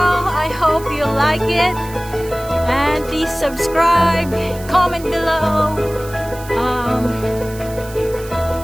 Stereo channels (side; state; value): right; noise; hiss, 18 dB below the sound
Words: hope you like it. And please subscribe, comment below.